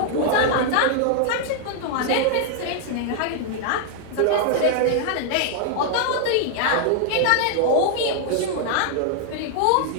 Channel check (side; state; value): both; different; correlation -0.01